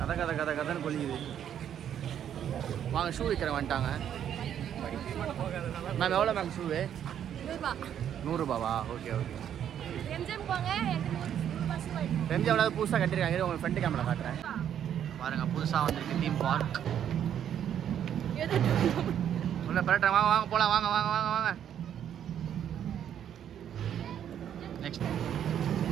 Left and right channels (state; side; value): quieter; left; 9.6 dB